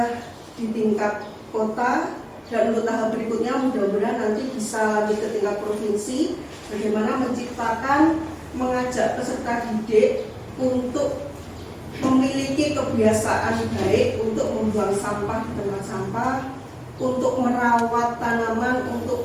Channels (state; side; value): identical; both; correlation 1.00